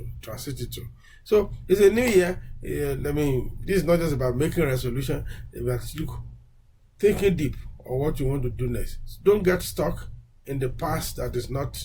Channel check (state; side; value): identical; both; correlation 1.00